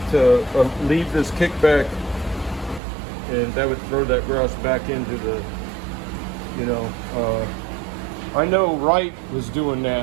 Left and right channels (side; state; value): left; drops out; at 2.8 s